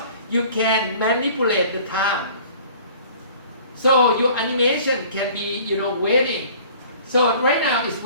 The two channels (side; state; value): both; inverted; correlation -0.50